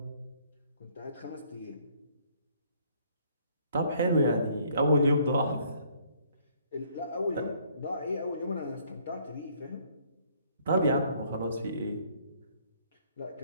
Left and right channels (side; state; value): both; inverted; correlation -0.62